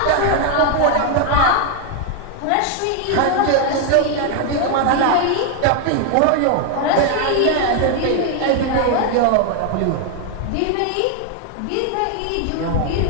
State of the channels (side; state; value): both; different; correlation 0.00